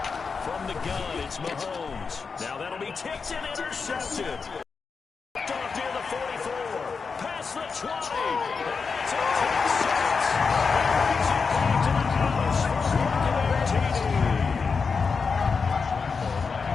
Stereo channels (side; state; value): right; quieter; 5.1 dB